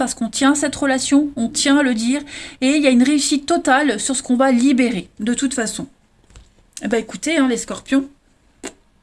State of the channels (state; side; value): identical; both; correlation 1.00